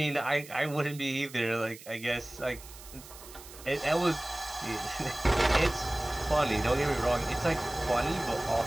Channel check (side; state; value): right; noise; hiss, 17 dB below the sound